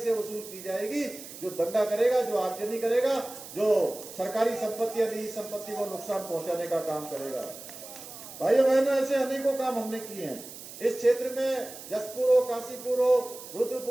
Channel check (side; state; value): right; noise; hiss, 14 dB below the sound